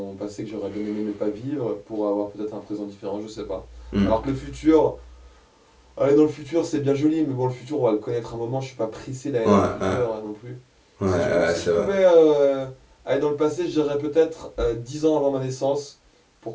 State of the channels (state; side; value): identical; both; correlation 1.00